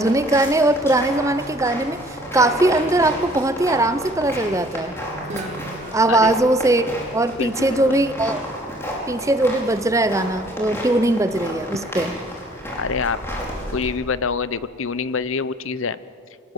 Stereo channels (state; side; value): normal; both; correlation 0.56